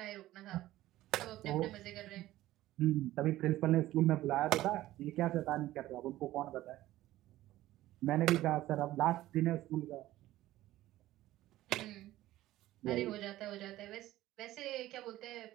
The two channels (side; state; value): left; quieter; 15.5 dB